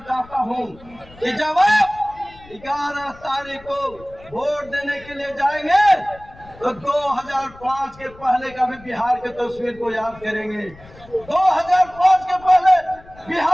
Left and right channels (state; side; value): noise; left; rumble, 22 dB below the sound